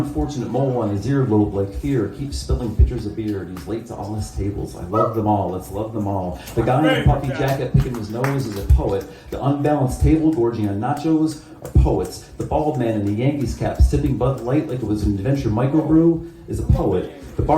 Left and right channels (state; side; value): identical; both; correlation 1.00